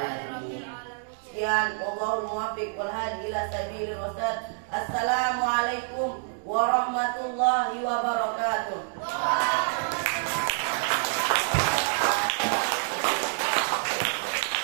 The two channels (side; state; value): left; silent; digital silence